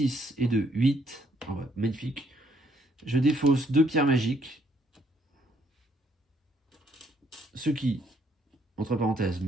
et 2, 8. Oh, ouais, magnifique. Je défausse 2 pierres magiques. Ce qui, entre parenthèses,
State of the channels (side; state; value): both; normal; correlation 0.69